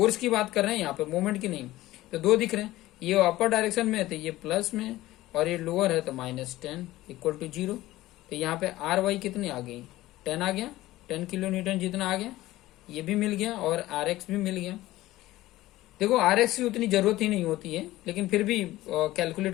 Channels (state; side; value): quieter; right; 16.7 dB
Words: की बात कर रहे हैं यहाँ पे, मोमेंट की नहीं, तो दो दिख रहे हैं। ये अपर डायरेक्शन में है तो ये प्लस में, और ये लोअर है तो -10 इक्वल टू 0। तो यहाँ पे आर वाई कितनी आ गई, 10 आ गया, 10 किलो न्यूटन जितना आ गया, ये भी मिल गया और आर एक्स भी मिल गया। देखो आर एक्स की उतनी जरूरत ही नहीं होती है, लेकिन फिर भी